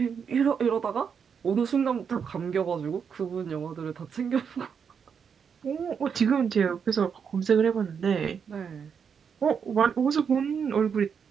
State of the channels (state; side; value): quieter; left; 6.8 dB